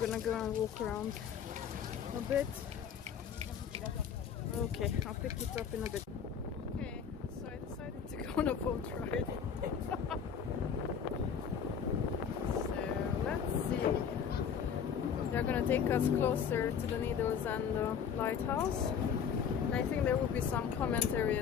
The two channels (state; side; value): quieter; right; 7.4 dB